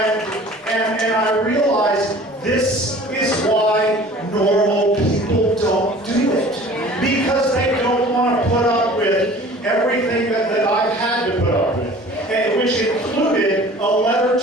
I realized this is why normal people don't do it. Because they don't want to put up with everything that I've had to put up with. And which included a letter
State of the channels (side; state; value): both; normal; correlation 0.46